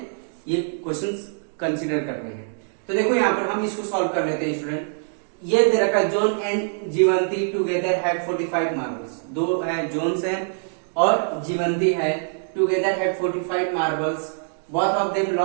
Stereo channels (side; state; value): left; silent; digital silence